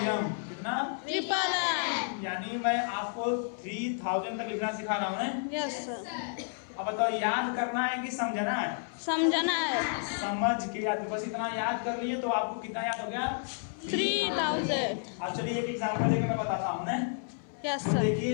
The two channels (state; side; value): silent; right; 57 dB below the other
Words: कितना? ट्रिपल। यानी मैं आपको 3000 तक लिखना सिखा रहा हूँ ना? Yes sir. अब बताओ याद करना है कि समझना है? समझना है। समझ के याद, बस इतना याद कर लिए तो आपको कितना याद हो गया? 3000। अब चलिए एक एग्जांपल देके मैं बताता हूँ ना। यस तो सर।